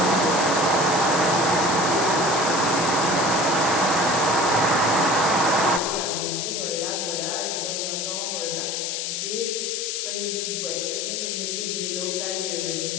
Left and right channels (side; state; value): left; noise; hiss, 2 dB below the sound